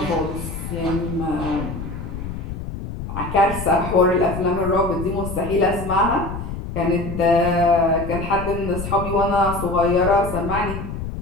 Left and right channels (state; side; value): noise; left; rumble, 7 dB below the sound